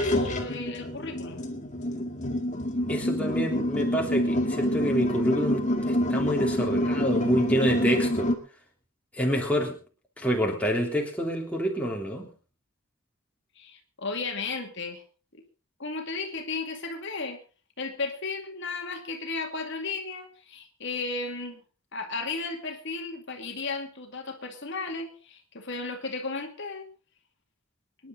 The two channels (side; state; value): both; normal; correlation 0.54